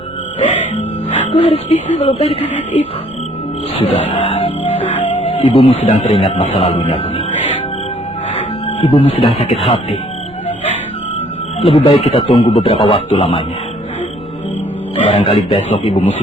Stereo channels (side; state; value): right; noise; rumble, 24 dB below the sound